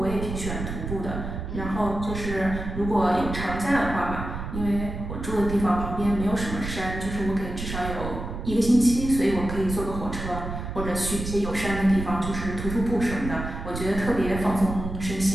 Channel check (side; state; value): right; noise; rumble, 6 dB below the sound